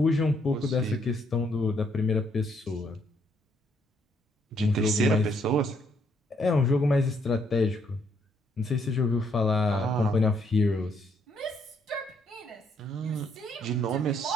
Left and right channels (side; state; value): both; normal; correlation 0.71